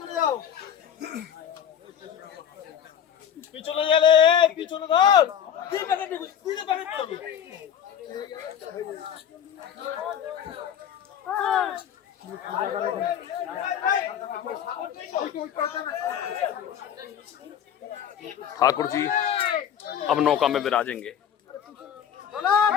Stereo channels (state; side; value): quieter; right; 9.0 dB